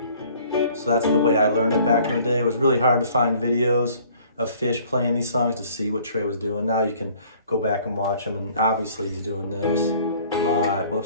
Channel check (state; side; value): inverted; both; correlation -0.55